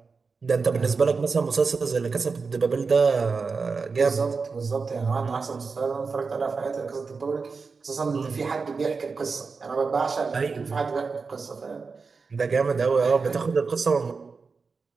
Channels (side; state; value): left; quieter; 4.7 dB